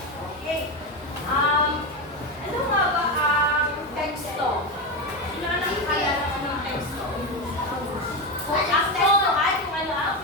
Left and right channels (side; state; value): both; normal; correlation 0.14